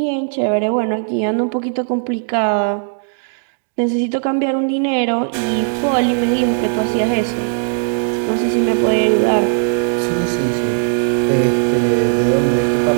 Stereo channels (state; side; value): silent; left; digital silence